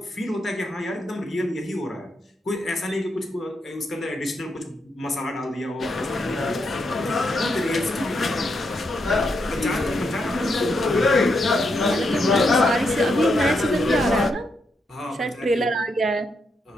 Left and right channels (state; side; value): normal; both; correlation 0.81